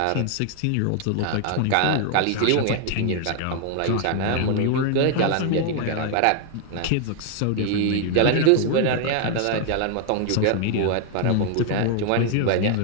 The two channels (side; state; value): both; different; correlation 0.00